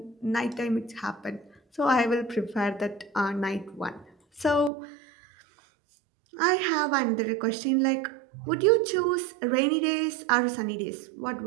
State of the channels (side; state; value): left; drops out; at 4.7 s